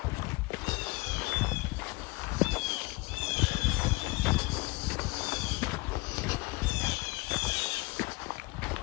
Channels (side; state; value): right; quieter; 23.6 dB